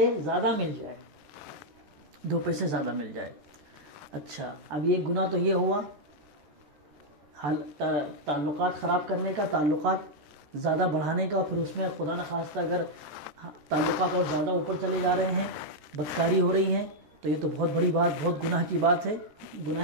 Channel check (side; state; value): left; late; 13 ms